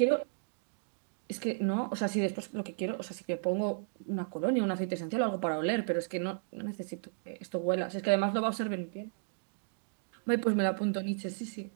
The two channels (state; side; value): silent; left; digital silence